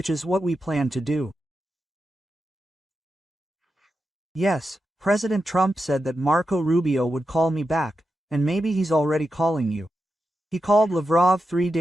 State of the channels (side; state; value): both; normal; correlation 0.89